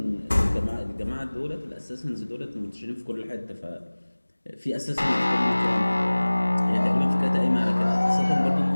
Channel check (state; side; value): inverted; both; correlation -1.00